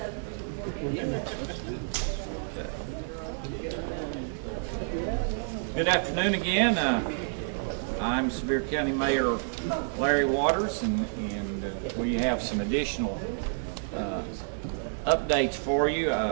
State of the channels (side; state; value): left; silent; digital silence